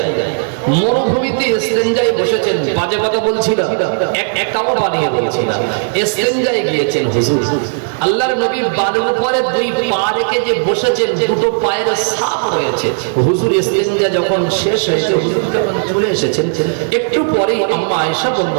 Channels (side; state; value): left; silent; digital silence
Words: মরুভূমিতে ইসতিনজায় বসেছেন। বাজে কথা বলছি না, একাও বানিয়ে বলছি না। ইসতিনজায় গিয়েছেন হুজুর। আল্লাহর নবী বালুর উপরে দুই পা রেখে যে বসেছেন, দুটো পায়ের ছাপ রয়েছে। হুজুর ইসতিনজা যখন শেষ হয়েছে, হুজুর যখন চলে এসেছেন, একটু পরেই আম্মা আয়েশা